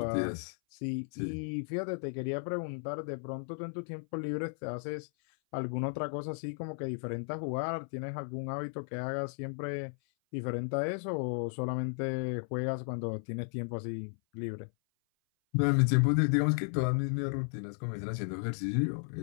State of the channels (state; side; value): silent; right; 55 dB below the other